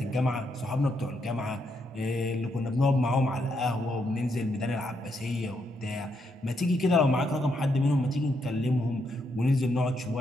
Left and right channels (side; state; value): both; normal; correlation 0.78